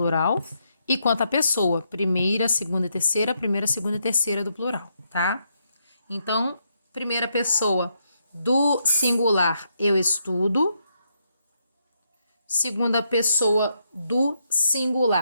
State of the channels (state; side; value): inverted; both; correlation -0.79